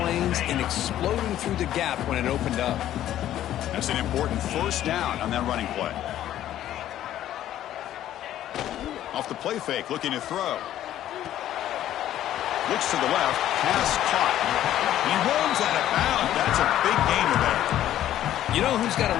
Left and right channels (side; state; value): right; quieter; 12.3 dB